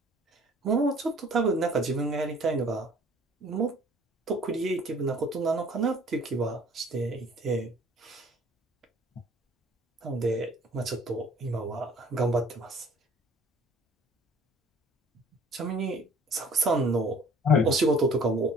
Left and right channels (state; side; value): normal; both; correlation 0.53